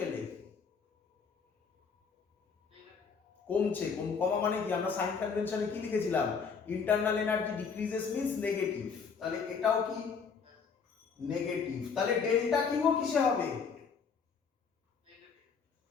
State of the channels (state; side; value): quieter; right; 5.8 dB